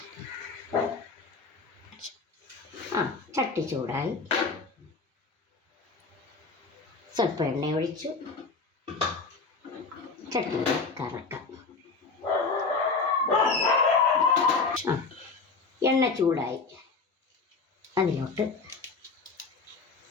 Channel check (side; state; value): right; quieter; 4.3 dB